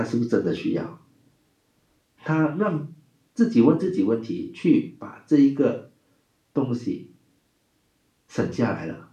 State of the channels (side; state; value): both; identical; correlation 1.00